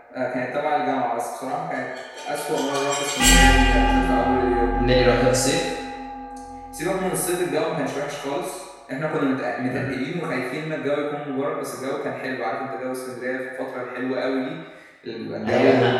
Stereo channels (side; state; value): both; identical; correlation 1.00